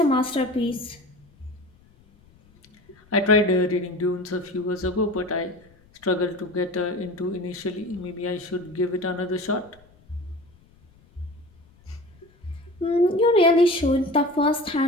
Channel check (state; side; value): noise; left; rumble, 29 dB below the sound